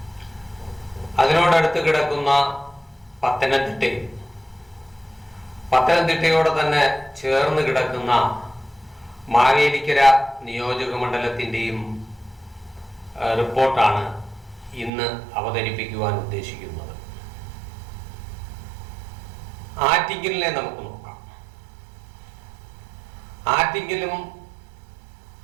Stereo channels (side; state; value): left; drops out; at 14.9 s